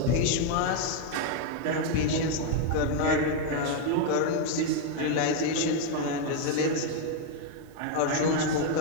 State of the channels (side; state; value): both; different; correlation 0.01